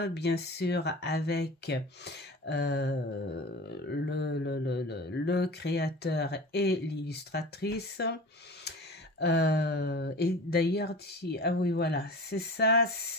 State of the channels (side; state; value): both; normal; correlation 0.35